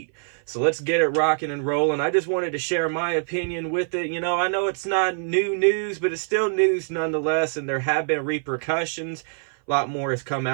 So let's get it rocking and rolling. I just wanted to share my opinion with it. I know it's not new news, but it's still news nonetheless, and there have been repercussions. A lot more has come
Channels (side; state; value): left; silent; 57 dB below the other